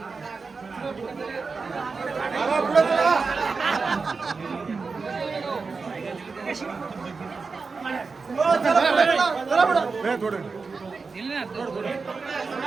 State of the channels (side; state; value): left; quieter; 4.6 dB